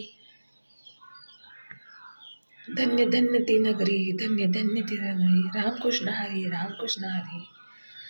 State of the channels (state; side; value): inverted; both; correlation -1.00